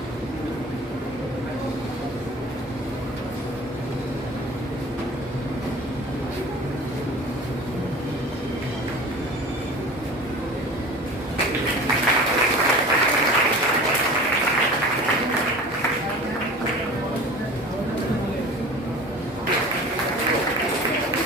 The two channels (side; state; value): both; normal; correlation 0.39